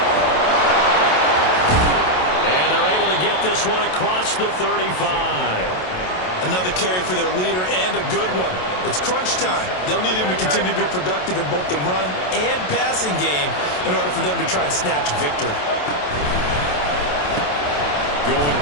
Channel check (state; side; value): late; right; 27 ms